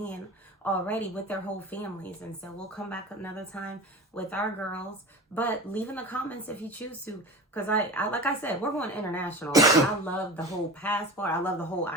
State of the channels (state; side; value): normal; both; correlation 0.32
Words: already with their whole families. And so we'll come back another time with our girls. But leave in the comments if you choose to. Because I like I said, we're going international. I love the whole passport. I love the whole